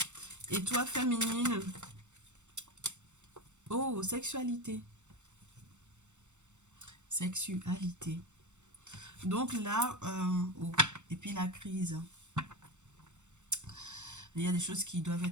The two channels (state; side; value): late; left; 0.84 ms